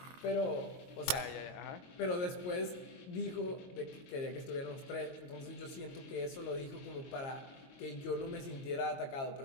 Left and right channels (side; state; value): right; late; 22 ms